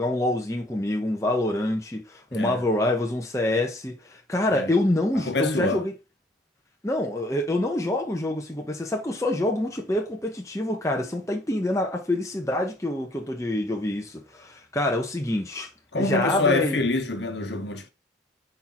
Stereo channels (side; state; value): both; normal; correlation 0.59